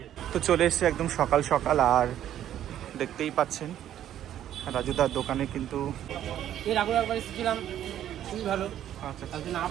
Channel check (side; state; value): left; quieter; 11.3 dB